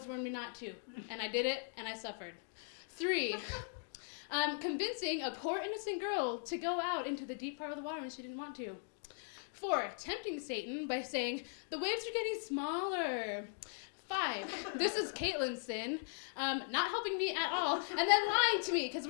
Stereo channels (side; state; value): right; silent; digital silence